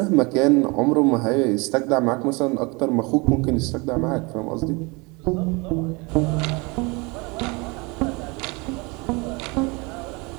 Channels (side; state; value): left; quieter; 27.4 dB